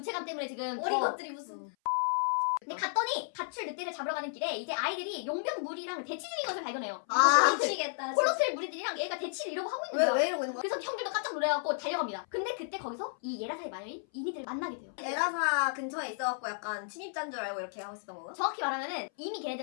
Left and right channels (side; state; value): right; silent; 56 dB below the other